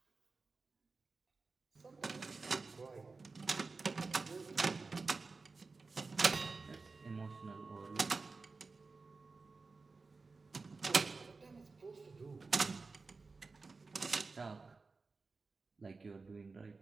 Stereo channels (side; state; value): left; quieter; 4.1 dB